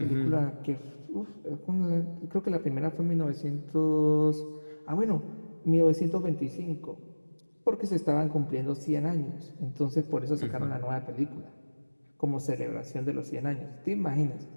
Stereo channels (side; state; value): both; inverted; correlation -1.00